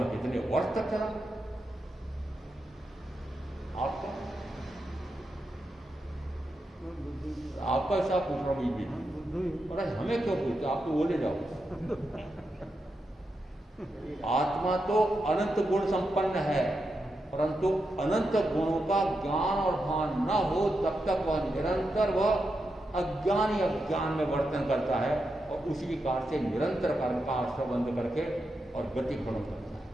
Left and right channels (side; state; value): both; normal; correlation 0.86